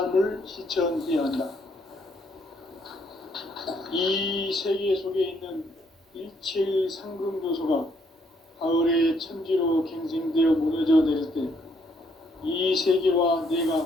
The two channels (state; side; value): normal; both; correlation 0.70